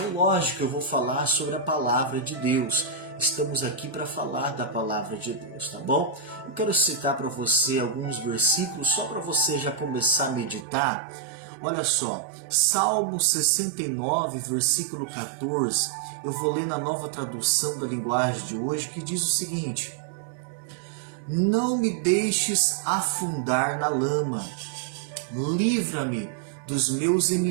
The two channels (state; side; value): drops out; left; at 10.7 s